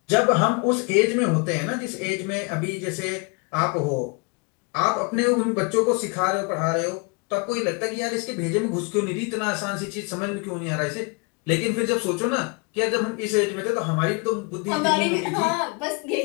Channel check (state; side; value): quieter; right; 31.7 dB